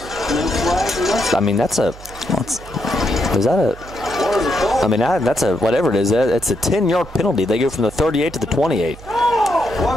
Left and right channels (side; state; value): right; noise; hum, 18 dB below the sound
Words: I mean, that's a. Is that a? I mean, that's a whatever it is. It's a 10-yard penalty. They go from the 38 to the 28.